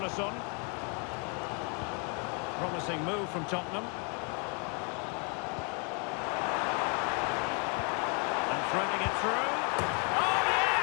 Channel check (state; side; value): quieter; right; 36.3 dB